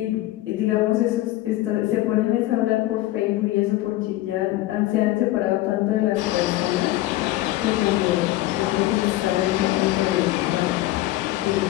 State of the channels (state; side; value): quieter; right; 16.4 dB